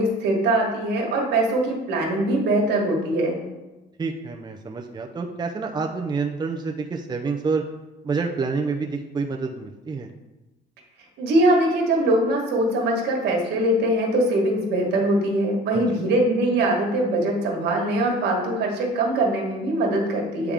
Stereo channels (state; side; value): normal; both; correlation 0.45